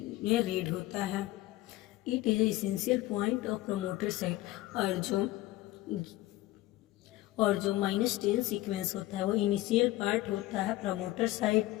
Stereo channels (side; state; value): right; quieter; 17.0 dB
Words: रीड होता है। It is essential point of promoter site. और जो -10 सीक्वेंस होता है वो इनिशियल पार्ट होता है प्रमोटर साइट